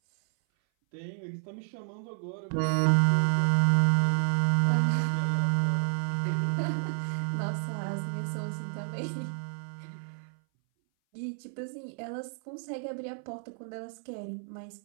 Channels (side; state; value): left; silent; 58 dB below the other